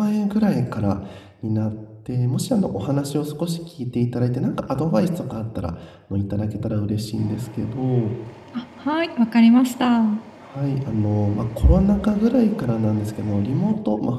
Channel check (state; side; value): identical; both; correlation 1.00